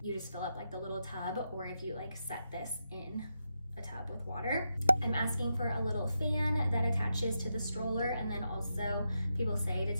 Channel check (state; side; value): inverted; both; correlation -0.85